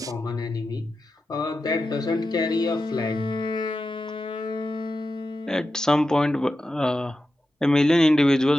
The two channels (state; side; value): normal; both; correlation 0.91